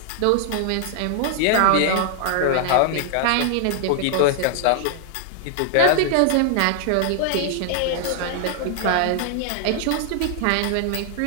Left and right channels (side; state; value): both; different; correlation 0.00